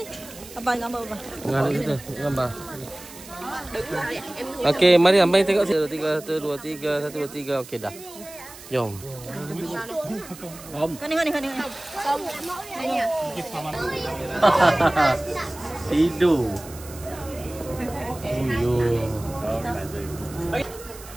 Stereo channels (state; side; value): noise; right; hiss, 17 dB below the sound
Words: Abang gambar apa? Gambar. Okey, mari abang tengok sini. 1 2 3 1 2 3. Okey dah. Jom. Kani. Tidur.